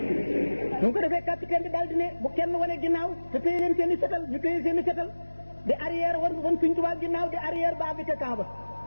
mu ko defee capitaine bi daal di ne bu kenn wane ginnaaw te téye leen seen i fetal ñu téye seen i fetal di arrière wan Sëñ Tuubaa ginnaaw di arrière ba bi ca camp ba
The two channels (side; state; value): both; inverted; correlation -1.00